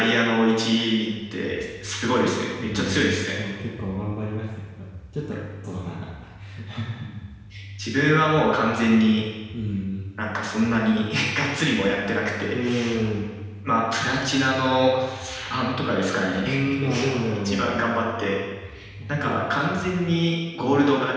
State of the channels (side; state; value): both; identical; correlation 1.00